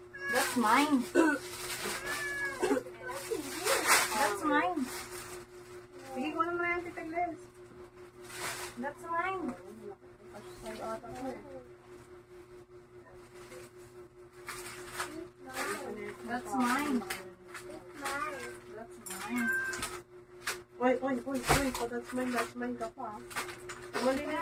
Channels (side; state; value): both; identical; correlation 1.00